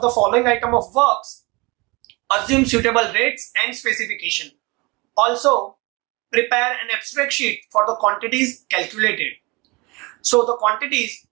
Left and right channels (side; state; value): left; quieter; 25.8 dB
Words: the following item of works. Assume suitable rates and specification. Also, prepare an abstract sheet for the quantities calculated. So the quantities